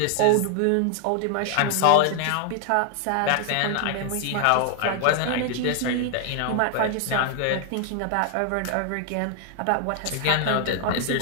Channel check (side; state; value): both; different; correlation 0.00